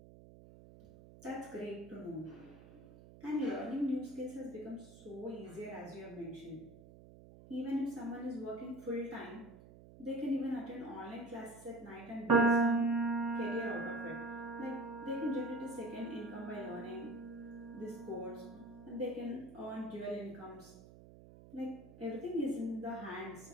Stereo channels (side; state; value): right; noise; hum, 18 dB below the sound